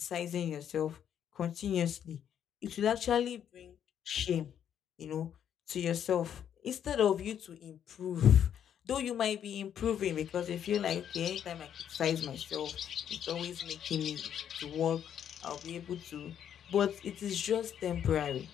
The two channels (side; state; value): right; quieter; 9.3 dB